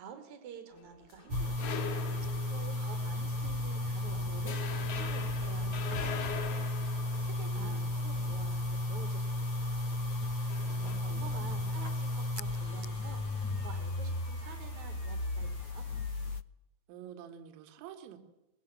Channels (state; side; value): late; left; 9.2 ms